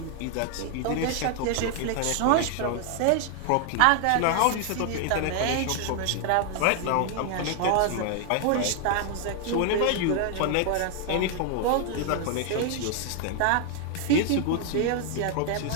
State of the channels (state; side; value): different; both; correlation 0.00